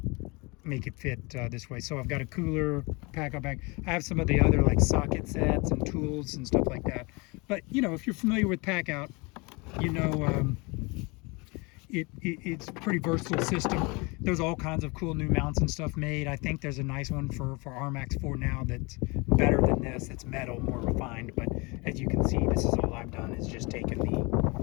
make it fit this way. So I've got a cooler Packout bag. I have some of the other like socket sets and tools and stuff like that. But you know, if you're familiar with Packout, you know it's a pretty versatile system. There's all kinds of cool new mounts and stuff made. I think there's a nice one for RMAX 4 now that's better than this. It's metal, more refined. But as you can see, this is all I've done is just taken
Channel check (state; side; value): quieter; right; 27.4 dB